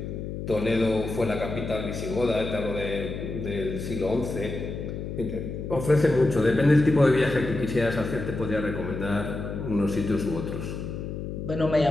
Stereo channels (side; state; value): left; noise; hum, 6 dB below the sound